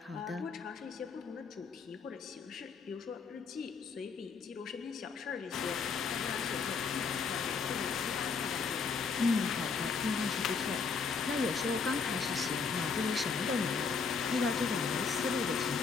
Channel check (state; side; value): quieter; right; 5.3 dB